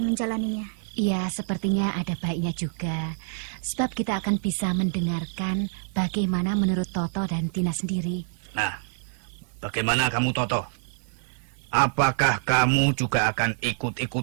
menjalaninya. Iya, sepertinya ada baiknya juga. Sebab kita akan bisa mendengarkan bagaimana menurut Toto dan Tina sendiri. Nah, bagaimana kamu, Toto? Apakah kamu juga akan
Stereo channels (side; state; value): left; silent; digital silence